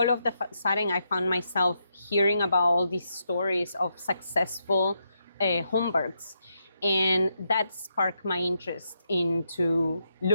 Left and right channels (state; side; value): inverted; both; correlation -0.81